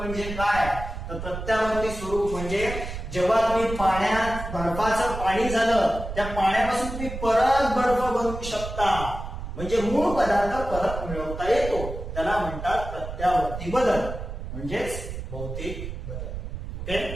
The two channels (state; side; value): noise; right; rumble, 8 dB below the sound